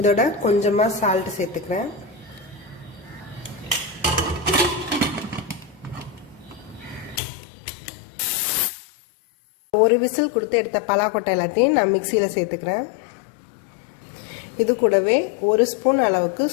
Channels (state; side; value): drops out; right; at 7.2 s